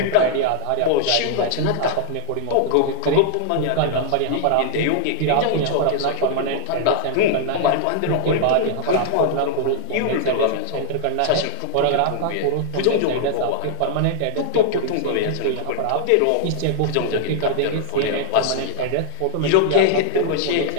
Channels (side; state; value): both; different; correlation 0.00